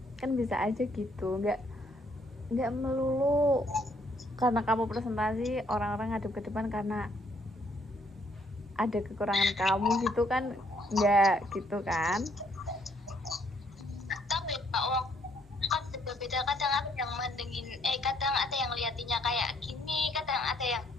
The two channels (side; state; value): both; normal; correlation 0.68